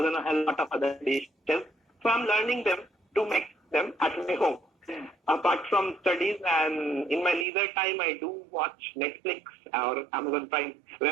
and a hell lot of other dishes. So I'm learning them to make them at my home. Apart from studies and in my leisure time, I do watch Netflix or Amazon Prime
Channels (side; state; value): left; drops out; at 7.5 s